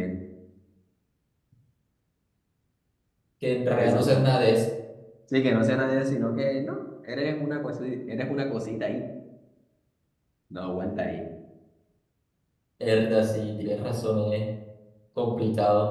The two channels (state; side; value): identical; both; correlation 1.00